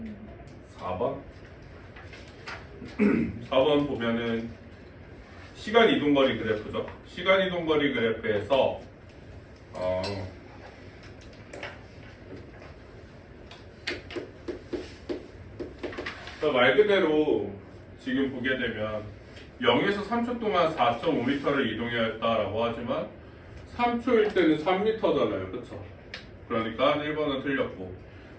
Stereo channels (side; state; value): both; identical; correlation 1.00